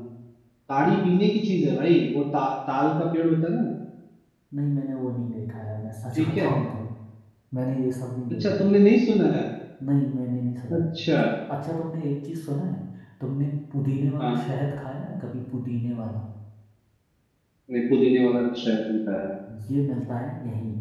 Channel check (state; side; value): identical; both; correlation 1.00